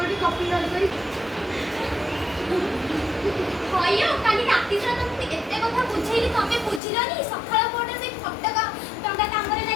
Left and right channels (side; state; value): right; drops out; at 6.8 s